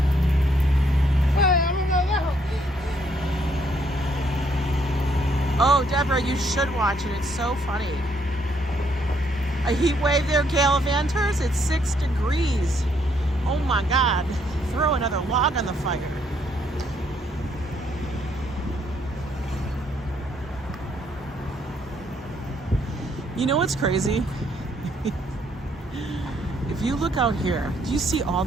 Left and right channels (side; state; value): both; normal; correlation 0.70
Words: Oh, Deborah, you should watch it. It's so funny. A heat wave there, Gallivanters. It's 6 degrees. Oh my God. Throw another log on the fire. You know what's crazy? If you look out here, do you see all